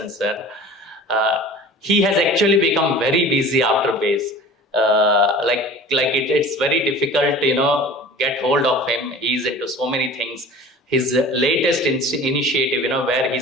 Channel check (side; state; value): both; normal; correlation 0.41